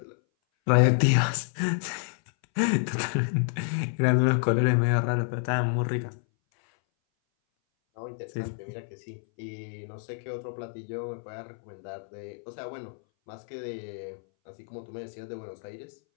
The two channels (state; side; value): silent; right; 58 dB below the other